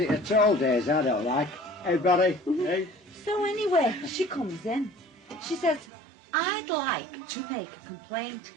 at all days I don't like. Hey, buddy. Hey. So anyway, she comes in. She says, I'd like to make a complaint.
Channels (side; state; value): left; drops out; at 5.9 s